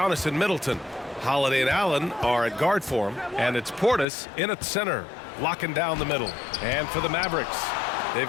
and Middleton. Holiday and Allen are at guard for him, and it's Portis in at center, locking down the middle. And for the Mavericks, they've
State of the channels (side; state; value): right; drops out; at 4.0 s